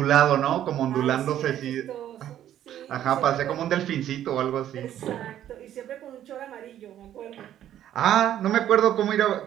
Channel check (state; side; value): quieter; left; 11.4 dB